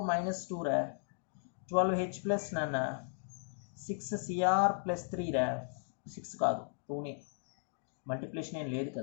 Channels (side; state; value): right; silent; digital silence